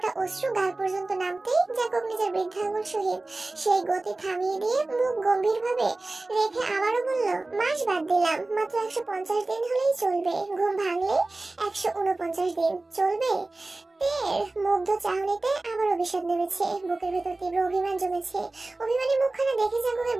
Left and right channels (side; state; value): left; quieter; 3.1 dB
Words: অশ্রু গাল পর্যন্ত নামতেই জাঙ্কুক নিজের বৃদ্ধাঙ্গুল সহিত সেই গতি থামিয়ে দিয়ে মুখ গম্ভীরভাবে রেখে আবারও বলল, মাস বাদ দিলাম, মাত্র 150 দিন হলেই চলবে। ঘুম ভাঙলে 149 দিন চলবে। তের মুগ্ধ চাহনিতে আবার অভিশাপ নেমেছে। বুকের ভেতর তীব্র অভিমান জমেছে। অভিমানী মুখখানা দেখে জাঙ্কুকের